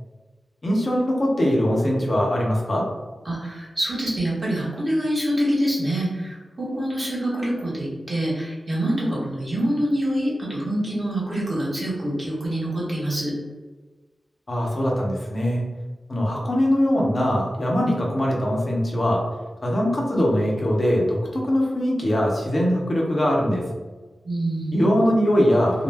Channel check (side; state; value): both; normal; correlation 0.94